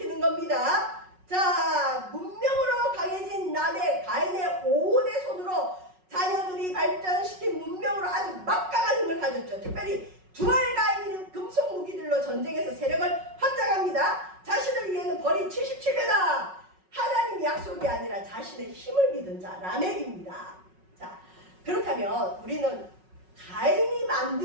겁니다. 자, 문명으로 강해진 라멕 가인의 5대 손으로 자녀들이 발전시킨 문명으로 아주 막강한 힘을 가졌죠. 특별히 두알 가인은 금속 무기들로 전쟁에서 세력을 확장합니다. 자신을 위해는 벌이 77배다. 하나님 약속이 아니라 자신의 힘을 믿은 자 라멕입니다. 자, 그렇다면 우리는 가인이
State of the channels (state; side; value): late; left; 5.4 ms